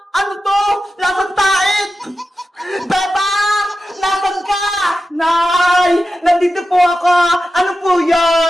Ano to? Lasang tait! Bebang! Nasaan ka? Nay! Nandito po ako! Ano po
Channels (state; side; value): normal; both; correlation 0.92